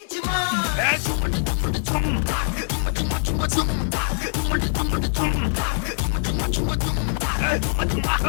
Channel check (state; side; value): silent; right; 63 dB below the other